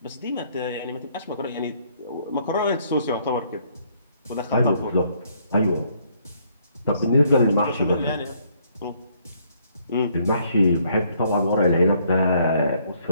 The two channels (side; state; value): both; inverted; correlation -0.67